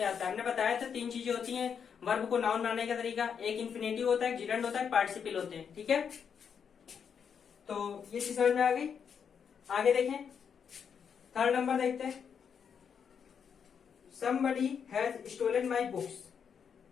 आता है। हमने बताया था 3 चीजें होती हैं वर्ब को नाउन बनाने का तरीका। एक इन्फिनेटिव होता है, जीरेंट होता है, पार्टिसिपल होते हैं। ठीक है, तो ये चीज समझ में आ गई। आगे देखें, थर्ड नंबर देखते हैं। somebody has stolen my books।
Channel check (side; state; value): right; quieter; 7.1 dB